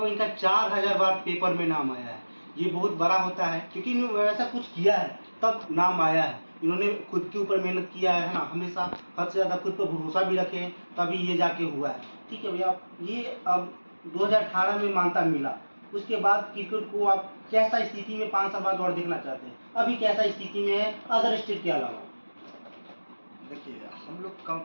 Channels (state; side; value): inverted; both; correlation -1.00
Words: इनका 4000 बार पेपर में नाम आया है। ये बहुत बड़ा होता है, क्योंकि इन्होंने वैसा कुछ किया है तब नाम आया है। इन्होंने खुद के ऊपर मेहनत किया है ना, हमेशा हद से ज़्यादा खुद पर भरोसा भी रखे हैं, तभी ये जाके हुआ है। ठीक है भैया, ये अब 2018 में मान्यता मिला, उसके बाद क्रिकेट को आप कैसा स्थिति में 5 साल बाद और देखना चाहते हैं? अभी कैसा स्थिति में है अदर स्टेट के अलावा? देखिए, हम लोग